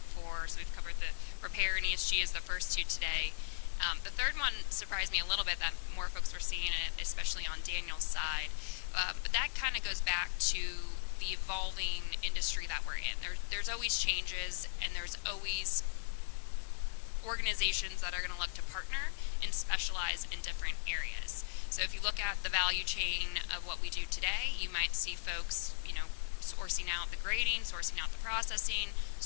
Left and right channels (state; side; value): silent; right; digital silence